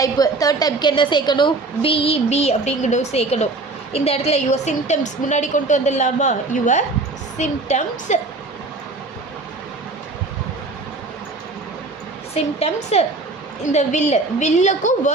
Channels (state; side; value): quieter; left; 3.4 dB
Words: 3rd டைப்புக்கு என்ன சேர்க்கணும்? பிஇபி அப்படிங்கிறது சேர்க்கணும். இந்த இடத்துல யுவர் சிம்டம்ஸ் முன்னாடி கொண்டு வந்துடலாமா? Your symptoms. சிம்டம்ஸ். இந்த வில்லுக்கும்